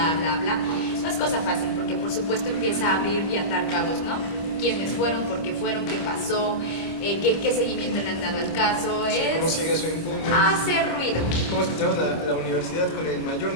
bla, bla, no es cosa fácil, porque por supuesto empieza a abrir y atar cabos, ¿no? ¿Quiénes fueron? ¿Por qué fueron? ¿Qué pasó? ¿Qué seguimiento le han dado al caso? Sí, ¿cómo sigue su impune? Hacer ruido. ¿Cómo es que tenemos la universidad con el mayor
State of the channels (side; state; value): right; late; 25 ms